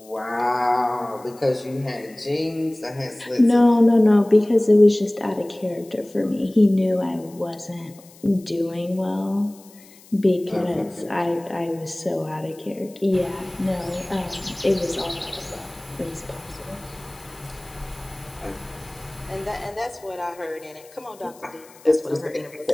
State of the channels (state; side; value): noise; left; hiss, 24 dB below the sound